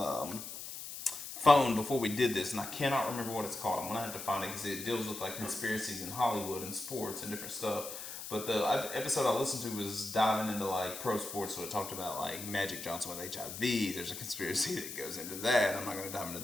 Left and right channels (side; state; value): left; noise; hiss, 9 dB below the sound